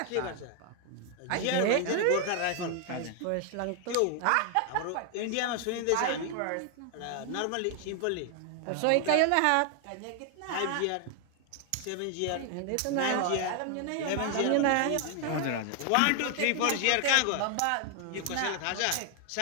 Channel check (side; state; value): both; different; correlation 0.00